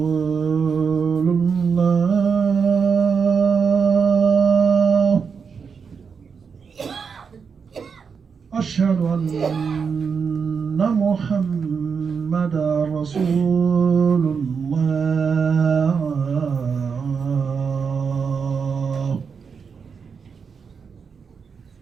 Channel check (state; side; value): quieter; left; 6.0 dB